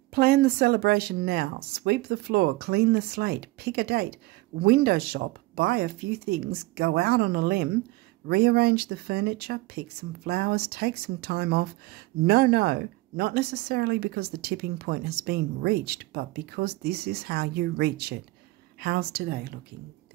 Plan the celebration now. Sweep the floor, clean the slate, pick a date, window shop, buy a few things, go out on a limb, rearrange the furniture, pick some flowers, take some time off. No, not necessarily because the tipping point has been reached, but because this is how you reach it. How's today looking,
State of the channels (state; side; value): quieter; left; 20.3 dB